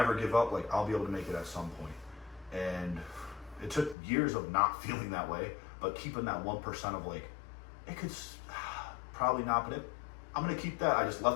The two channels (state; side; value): drops out; right; at 4.0 s